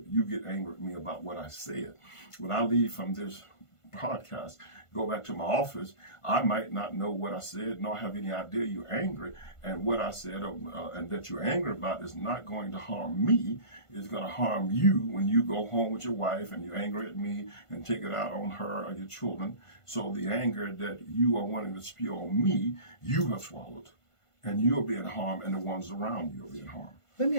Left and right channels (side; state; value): right; late; 1.5 ms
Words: you get angry with me about what I said. When I leave from this podcast, go back to my office, I might not know what I said, nor have any idea you're angry. And what I said and that you're angry about is not going to harm me. It's going to harm you when you go home with your wife and you're angry at me and take it out on her or your children. So the anger that you are wanting to spew on me, you have swallowed. And you're being harmed, and the ones around you are being harmed. Let me